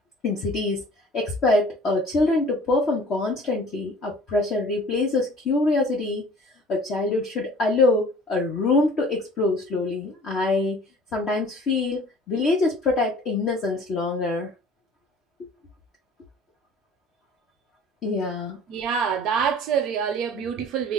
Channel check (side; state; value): both; normal; correlation 0.48